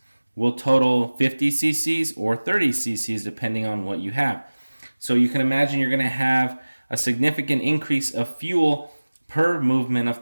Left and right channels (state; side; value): inverted; both; correlation -1.00